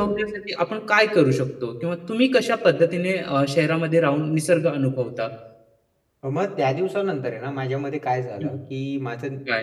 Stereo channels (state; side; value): identical; both; correlation 1.00